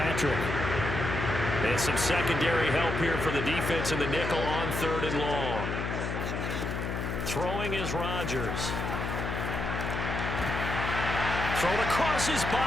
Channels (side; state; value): left; noise; hum, 3 dB below the sound